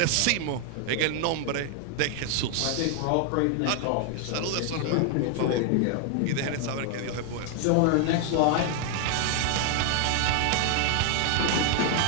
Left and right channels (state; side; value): different; both; correlation 0.00